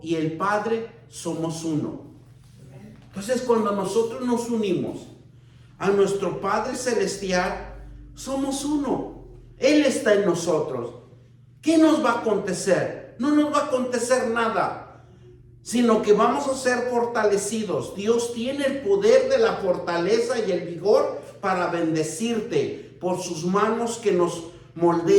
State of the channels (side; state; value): both; identical; correlation 1.00